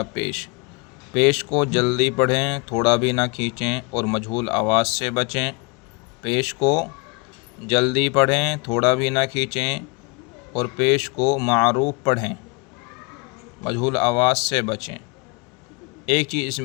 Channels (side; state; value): right; quieter; 30.1 dB